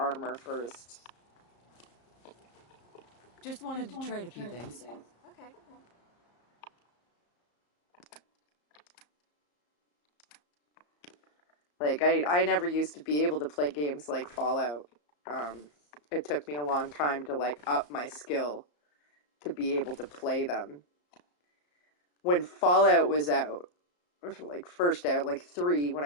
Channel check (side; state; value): right; late; 34 ms